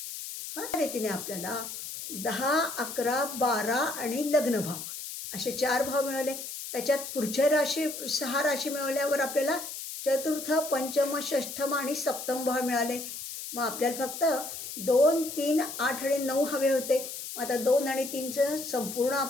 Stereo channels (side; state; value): left; noise; hiss, 8 dB below the sound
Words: ह्या रीतीने आपल्याला 10, 11, 12 आणि लग्न भाव असे 4 भाव मिळाले. त्याच्यात पुढच्या राशी 6 राशी मिळवल्यावर आपल्याला चतुर्थ, पंचम, षष्ठम आणि सप्तम भाव मिळाले. मग आपल्याला फक्त 2, 3, 8 आणि 9 हवे होते. मग आता 2 आणि 3चं संपूर्ण